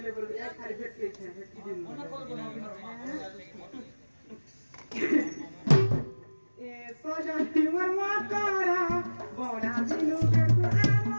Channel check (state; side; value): inverted; both; correlation -1.00